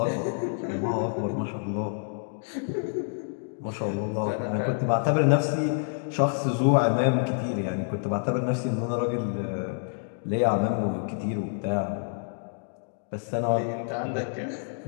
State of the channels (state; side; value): silent; right; digital silence